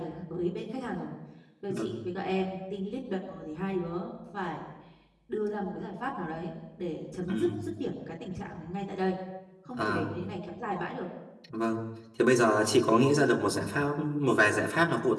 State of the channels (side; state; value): both; identical; correlation 1.00